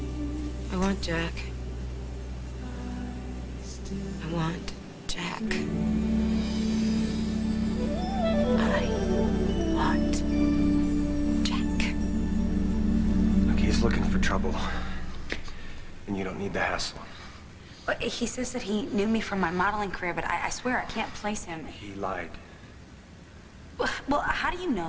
I want Jack. I want Jack. I want Jack. Look, he's looking for trouble. And you don't need the hassle. Well, he says that he knew me from my modeling career, but I swear I can't place him. He lied. Well, how do you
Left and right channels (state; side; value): identical; both; correlation 1.00